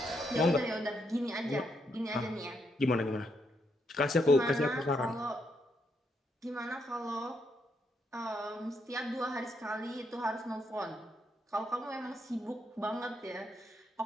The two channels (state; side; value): normal; both; correlation 0.78